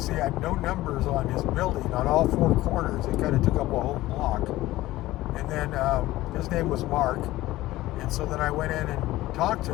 he had no numbers on his building on all four corners. It kind of took up a whole block. And then his name was Mark. And so then I went in and talked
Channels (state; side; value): quieter; right; 16.8 dB